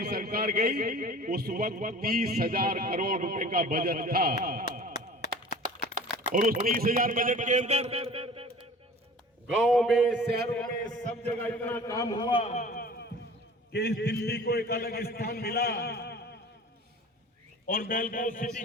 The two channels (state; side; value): normal; both; correlation 0.42